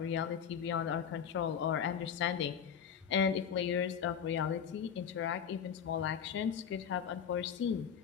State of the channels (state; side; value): quieter; right; 7.7 dB